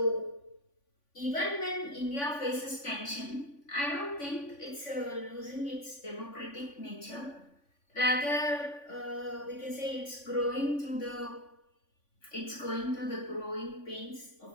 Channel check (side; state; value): right; late; 3.5 ms